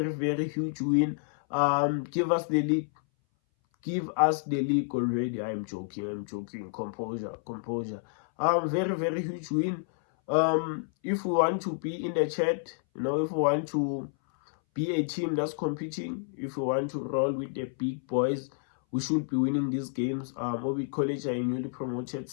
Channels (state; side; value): silent; right; 58 dB below the other